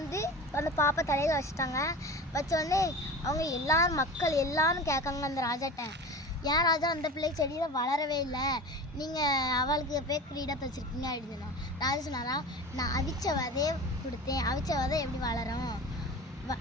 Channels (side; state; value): both; normal; correlation 0.33